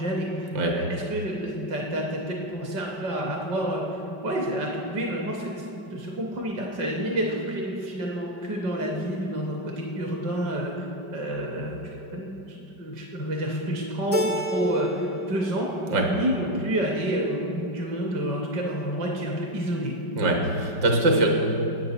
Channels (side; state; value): left; late; 5.1 ms